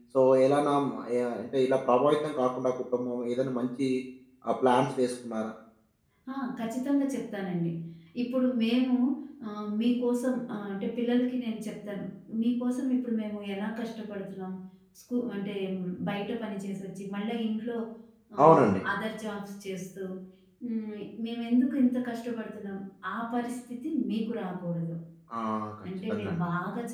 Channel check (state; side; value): identical; both; correlation 1.00